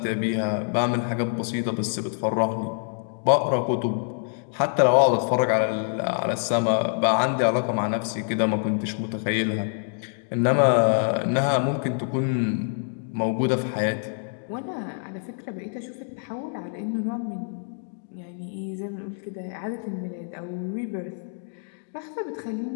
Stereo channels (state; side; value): silent; right; digital silence